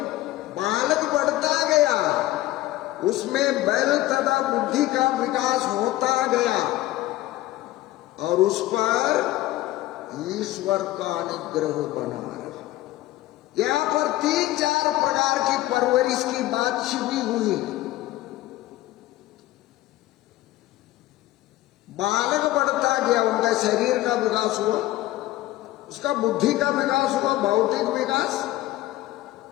बालक बढ़ता गया, उसमें बल तथा बुद्धि का विकास होता गया और उस पर ईश्वर का अनुग्रह बना रहा। यहाँ पर 3-4 प्रकार की परवरिश की बात छिपी हुई है। बालक बढ़ता गया, उनका शरीर का विकास हुआ, उसका बुद्धि का विकास हुआ, भौतिक विकास,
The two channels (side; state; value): right; quieter; 16.2 dB